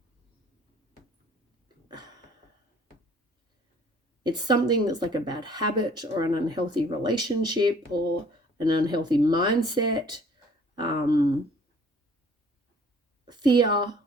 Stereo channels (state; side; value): normal; both; correlation 0.55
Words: like a bad habit or an unhealthy relationship or an unhealthy mindset, fear,